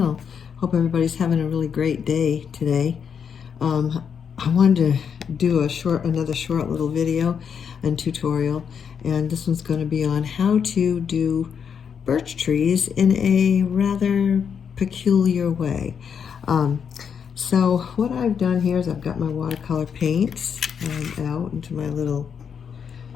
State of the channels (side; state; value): right; quieter; 7.2 dB